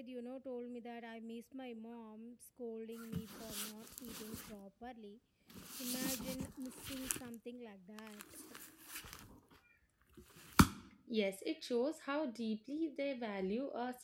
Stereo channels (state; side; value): identical; both; correlation 1.00